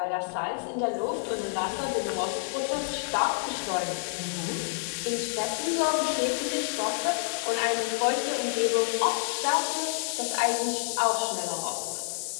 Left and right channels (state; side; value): silent; right; digital silence